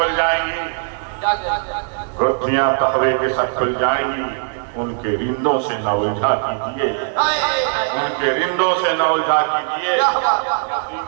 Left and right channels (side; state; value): left; silent; 66 dB below the other